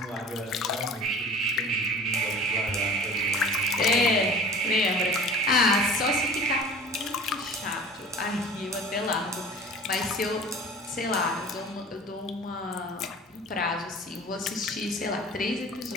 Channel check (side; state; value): both; normal; correlation 0.42